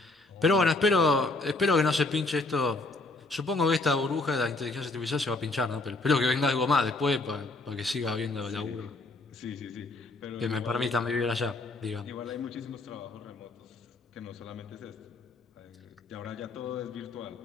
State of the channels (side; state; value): right; quieter; 3.2 dB